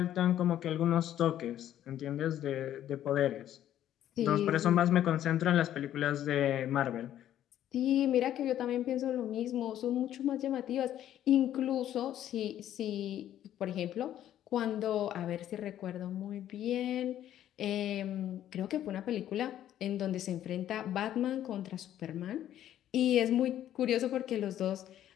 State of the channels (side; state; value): right; quieter; 11.6 dB